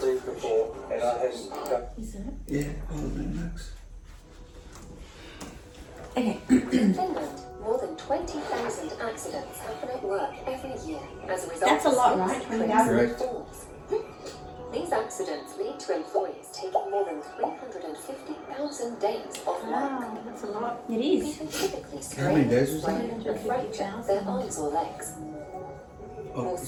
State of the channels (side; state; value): both; identical; correlation 1.00